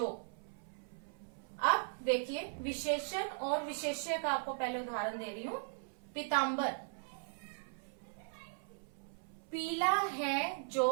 अब देखिए, विशेषण और विशेष्य का आपको पहले उदाहरण दे रही हूं। पीतांबर, पीला है जो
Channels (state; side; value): silent; left; 52 dB below the other